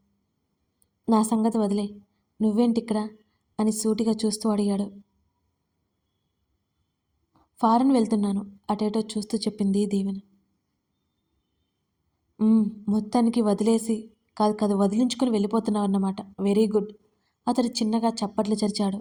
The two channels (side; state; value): both; identical; correlation 1.00